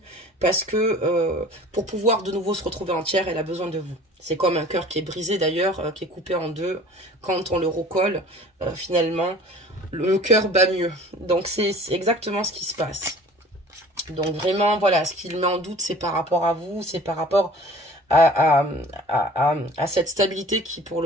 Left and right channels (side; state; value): both; normal; correlation 0.46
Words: parce que pour pouvoir de nouveau se retrouver entière, elle a besoin de vous. C'est comme un cœur qui est brisé d'ailleurs, qui est coupé en deux. Quand on le recolle, finalement, le cœur bat mieux. Donc c'est exactement ce qui se passe. Donc vraiment, voilà, ce qu'il met en doute, c'est par rapport à vous, c'est par rapport à cette stabilité qui pour